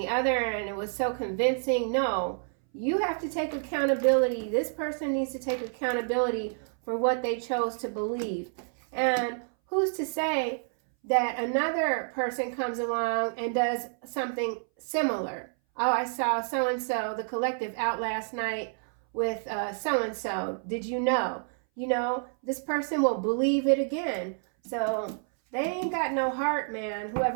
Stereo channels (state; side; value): silent; left; 59 dB below the other